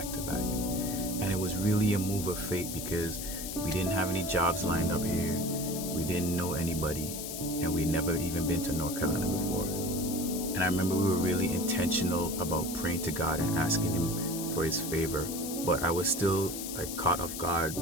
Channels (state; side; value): noise; left; hiss, 7 dB below the sound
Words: to back. And it was really a move of fate because we didn't have any jobs lined up here, we didn't know anybody, and we'd never even been to North Carolina before. And I remember we were really intentional about praying to God and asking Him for His favor, but I was still caught off guard